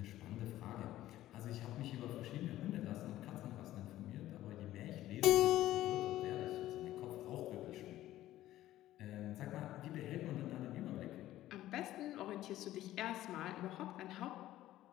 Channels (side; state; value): right; quieter; 14.4 dB